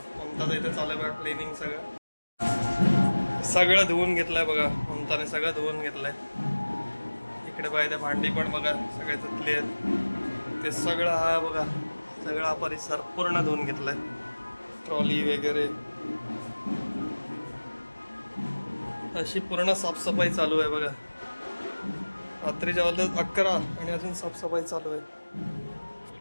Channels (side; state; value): both; inverted; correlation -1.00